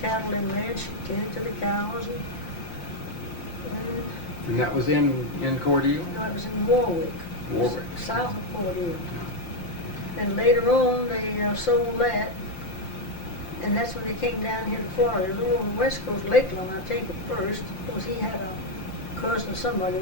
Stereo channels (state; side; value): late; right; 5.8 ms